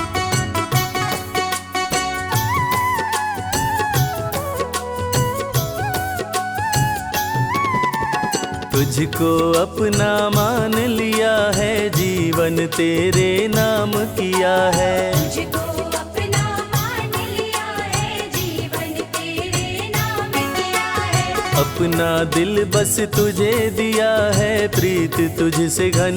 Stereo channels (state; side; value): identical; both; correlation 1.00